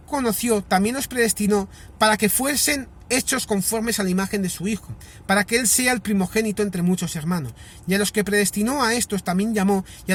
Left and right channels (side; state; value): both; identical; correlation 1.00